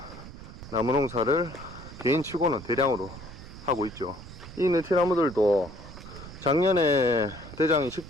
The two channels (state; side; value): noise; right; rumble, 15 dB below the sound